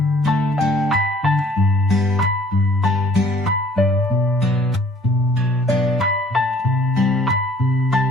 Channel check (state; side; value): normal; both; correlation 0.56